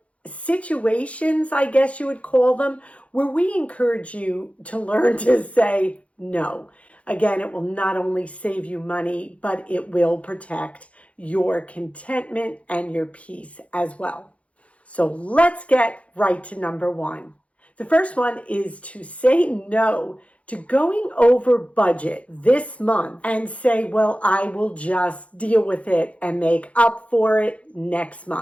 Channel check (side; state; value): right; late; 0.064 ms